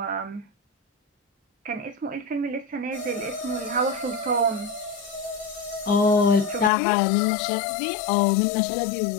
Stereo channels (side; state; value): right; drops out; at 6.7 s